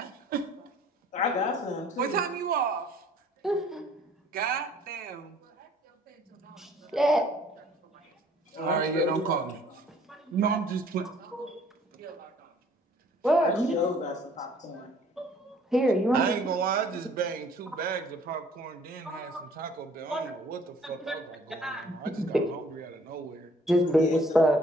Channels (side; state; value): both; normal; correlation 0.57